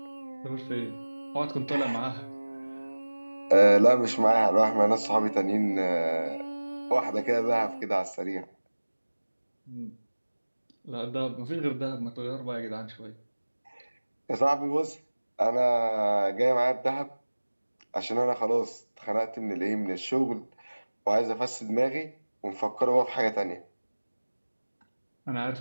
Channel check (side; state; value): both; inverted; correlation -1.00